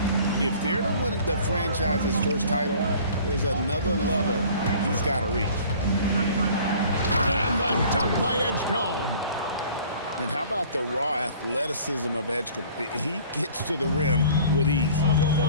if they're to win the franchise's first title, there's another level he's got to reach. And the dunk by Edgecombe. And how about the raw athleticism of Edgecombe? He gets to the rim with ease.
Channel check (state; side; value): inverted; both; correlation -0.49